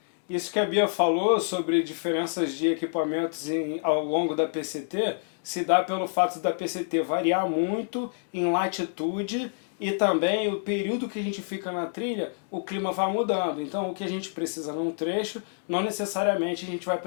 Isso que a Bia falou sobre diferenças de equipamentos ao longo da PCT se dá pelo fato da PCT variar muito em latitude e também o período que a gente fica na trilha, o clima vai mudando. Então o que a gente precisa num trecho, não necessariamente a gente vai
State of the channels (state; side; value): silent; right; digital silence